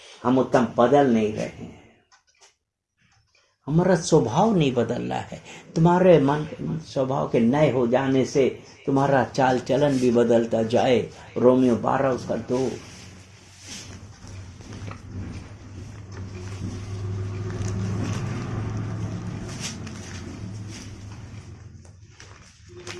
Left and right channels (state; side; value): identical; both; correlation 1.00